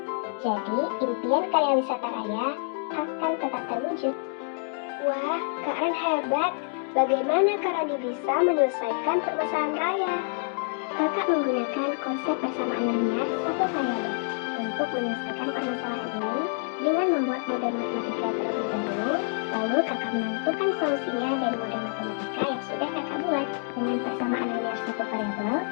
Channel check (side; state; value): right; silent; 60 dB below the other